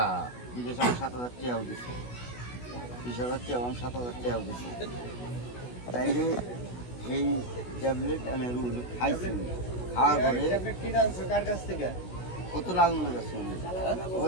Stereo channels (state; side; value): late; right; 16 ms